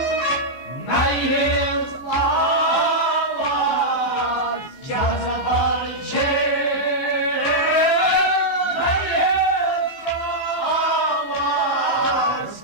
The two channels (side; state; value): right; late; 15 ms